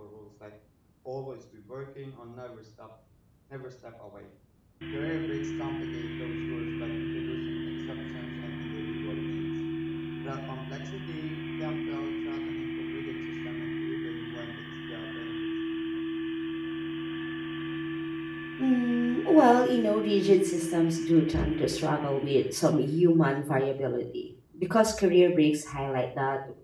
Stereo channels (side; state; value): both; identical; correlation 1.00